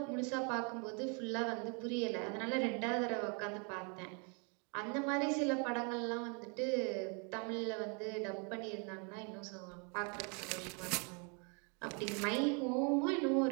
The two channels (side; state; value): left; quieter; 35.5 dB